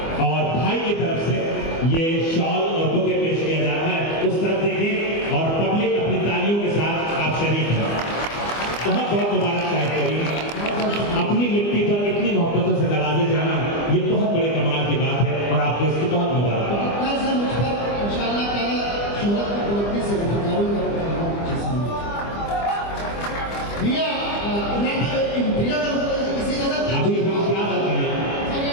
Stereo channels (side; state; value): right; late; 25 ms